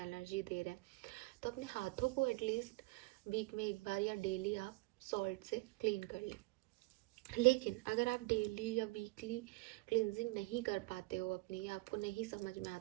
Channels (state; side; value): quieter; left; 23.3 dB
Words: दे रहे हैं, तो अपने हाथों को एटलीस्ट वीक में एक बार या डेली आप सॉल्ट से क्लीन कर लें। लेकिन अगर आप डेली या वीकली क्लिनजिंग नहीं कर पाते हो अपनी, या आपको नहीं समझ में